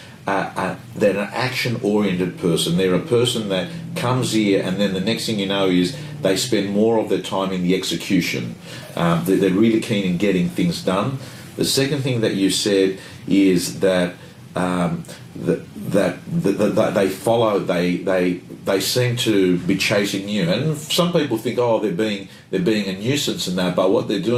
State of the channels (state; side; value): identical; both; correlation 1.00